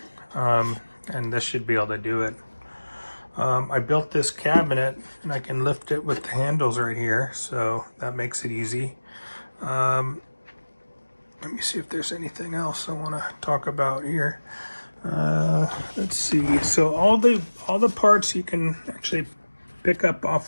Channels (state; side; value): inverted; both; correlation -1.00